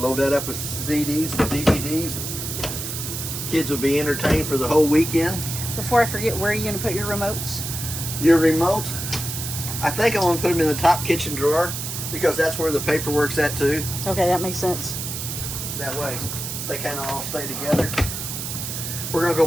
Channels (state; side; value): noise; right; hiss, 5 dB below the sound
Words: load that up with CDs and DVDs. Kids will be entertained for the whole weekend. Before I forget, where are you going to put your remotes? Your remotes, I think I want to put them in the top kitchen drawer because that's where the paperwork's at too. Okay, that makes sense. That way they kind of all stay together. We're going to go